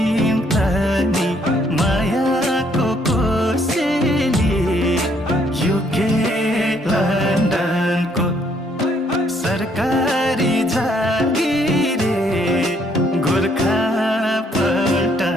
तनी मायाको कोसेली युके लन्डनको सरकारी जागिरे गोर्खा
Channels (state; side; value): normal; both; correlation 0.68